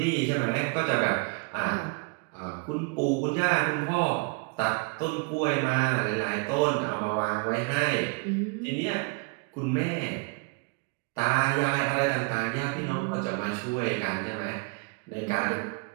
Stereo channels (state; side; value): quieter; left; 33.0 dB